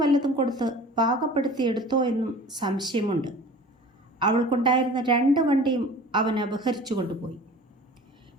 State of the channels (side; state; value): both; normal; correlation 0.42